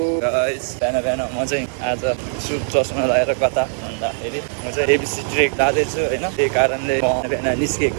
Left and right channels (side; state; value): left; silent; 66 dB below the other